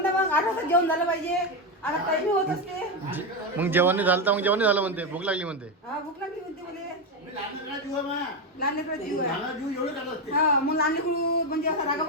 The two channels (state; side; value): normal; both; correlation 0.09